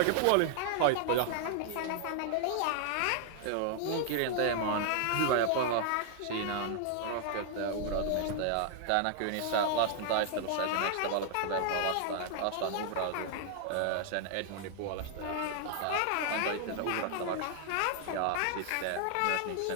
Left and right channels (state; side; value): different; both; correlation 0.00